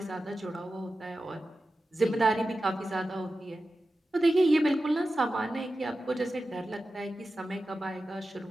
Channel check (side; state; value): both; normal; correlation 0.93